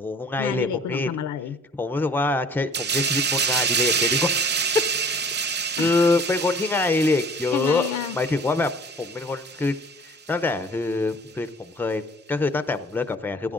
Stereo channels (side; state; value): both; normal; correlation 0.50